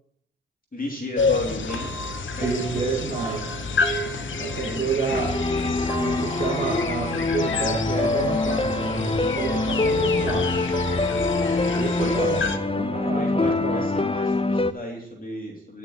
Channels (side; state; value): both; normal; correlation 0.52